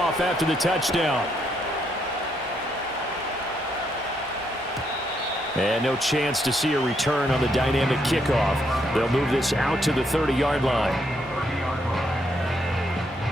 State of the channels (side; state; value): both; normal; correlation 0.75